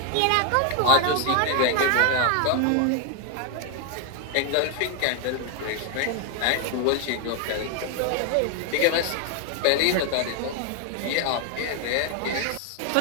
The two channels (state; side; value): different; both; correlation 0.01